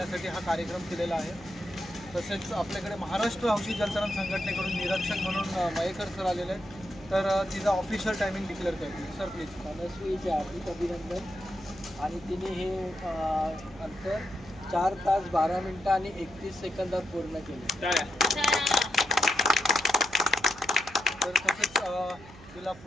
हा कार्यक्रम केलेला आहे। तसेच आपल्याकडे महाराष्ट्र हौशी जलतरण संघटनेकडून निरीक्षक म्हणून मयेकर सर आलेले आहेत, तर तिचा ऑफिशियल टायमिंग डिक्लेअर करतील। Sir please. मनस्वीचे हार्दिक अभिनंदन। आणि तिने हे अंतर 4 तास 12 मिनिटं आणि 31 सेकंदात पूर्ण केले। तर तसेच तिला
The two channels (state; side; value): noise; right; hum, 19 dB below the sound